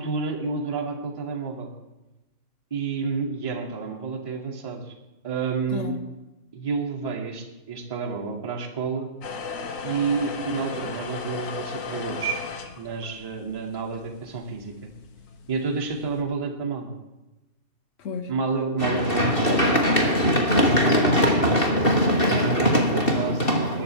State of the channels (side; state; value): right; late; 2.7 ms